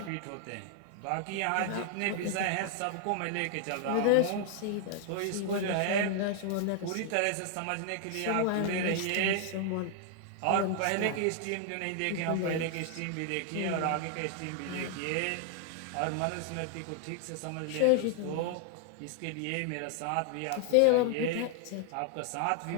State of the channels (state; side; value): different; both; correlation 0.00